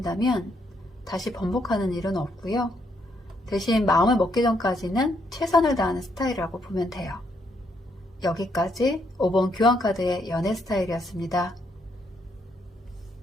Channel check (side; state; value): both; normal; correlation 0.74